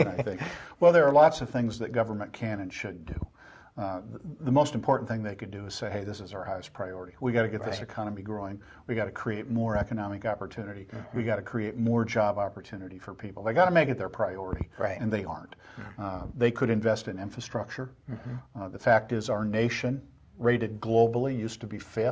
I think. Well, there are lots of things that government can and should do. The most important thing they could do is say, hey, this is our highest priority. We got to get this economy growing. We got to create more economic opportunity. We got to create more job opportunity for people. They got to make it their priority, and they aren't. They could invest in infrastructure. The fact is our nation, rated globally, used to be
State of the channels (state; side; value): identical; both; correlation 1.00